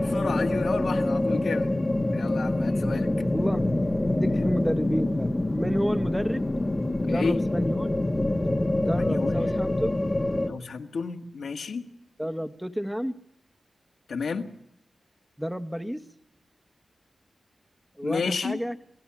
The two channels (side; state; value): both; normal; correlation 0.98